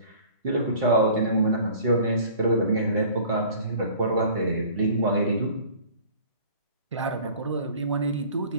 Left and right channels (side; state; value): both; inverted; correlation -0.47